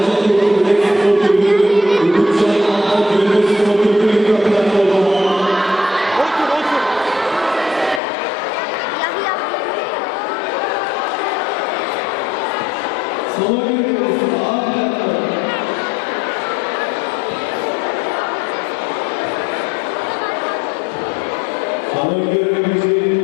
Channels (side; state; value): right; drops out; at 8.0 s